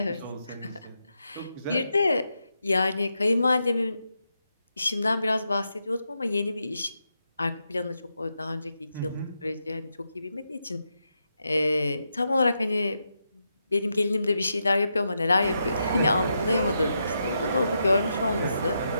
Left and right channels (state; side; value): inverted; both; correlation -0.84